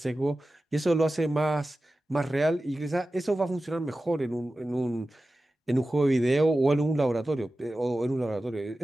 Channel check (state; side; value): normal; both; correlation 0.95